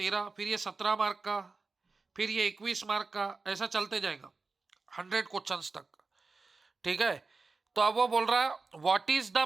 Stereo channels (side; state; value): left; quieter; 4.0 dB